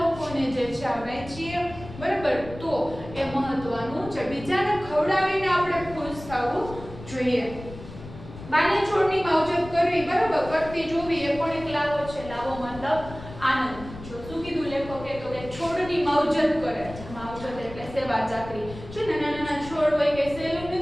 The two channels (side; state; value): left; noise; rumble, 14 dB below the sound